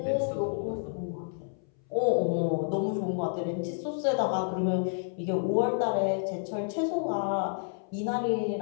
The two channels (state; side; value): silent; right; 58 dB below the other